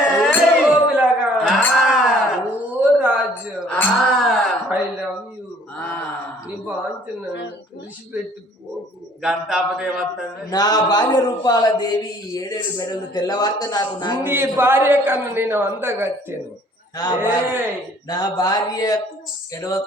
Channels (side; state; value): both; normal; correlation 0.57